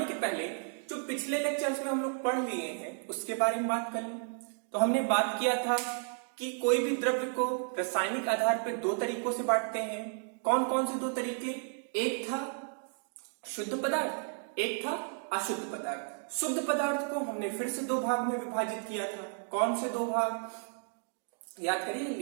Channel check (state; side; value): silent; left; 56 dB below the other